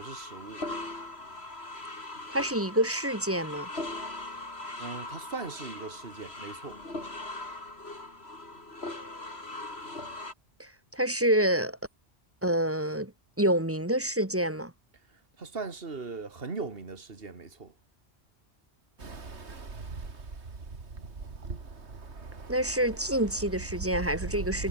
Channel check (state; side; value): normal; both; correlation -0.17